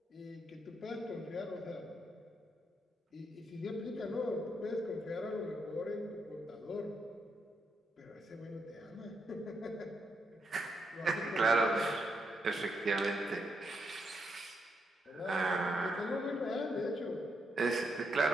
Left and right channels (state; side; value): normal; both; correlation 0.80